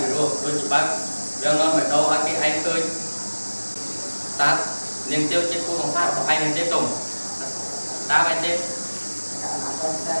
ីរោដូចច្បាស់យ៉ាងនាំមកដល់ឲ្យគេឯងឃើញតើនាងទាវជាគូសង្សាររបស់ឯងមែនទេតុងតើមែនទេ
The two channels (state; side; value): inverted; both; correlation -1.00